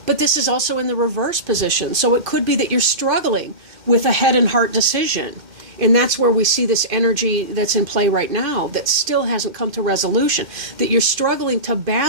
this is also in the reverse position. So it could be that you're struggling with a head and heart decision. And that's where we see this energy that's in play right now that still hasn't come to resolution. That you're struggling to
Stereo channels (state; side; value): late; left; 2.5 ms